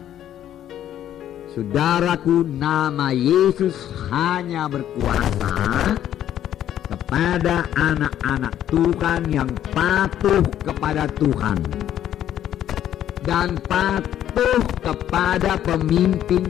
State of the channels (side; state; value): right; quieter; 11.2 dB